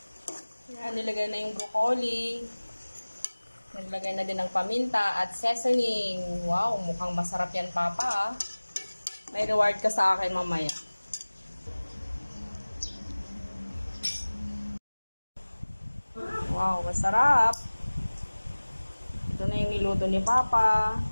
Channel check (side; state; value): both; inverted; correlation -1.00